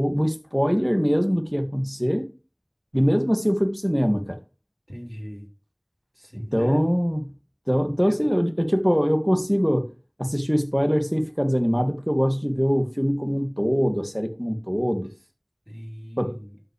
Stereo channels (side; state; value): both; identical; correlation 1.00